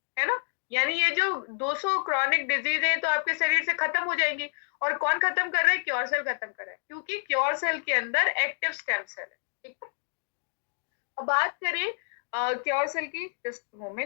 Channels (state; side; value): silent; right; digital silence